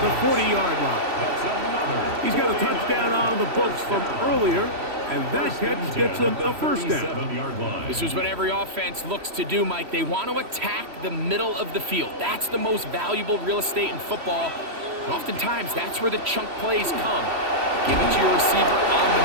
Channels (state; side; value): late; left; 3.1 ms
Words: the 40-yard line. He's got a touchdown on the books from earlier, and that catch gets him a first down. This is what every offense looks to do, Mike. They want to attack the middle of the field. That's the most valuable real estate in football. And oftentimes, that's where the chunk plays come. Give it to your receiver on the